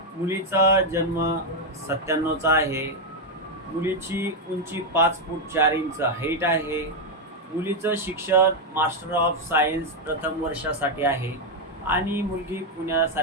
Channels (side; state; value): both; normal; correlation 0.03